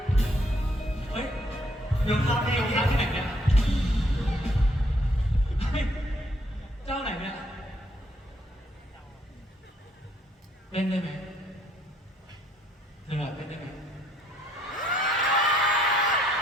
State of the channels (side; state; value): both; normal; correlation 0.68